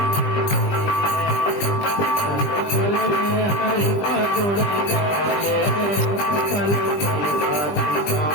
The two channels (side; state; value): right; late; 20 ms